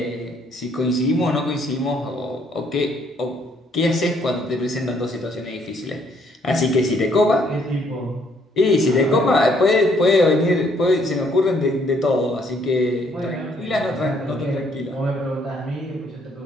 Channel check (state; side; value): normal; both; correlation 0.67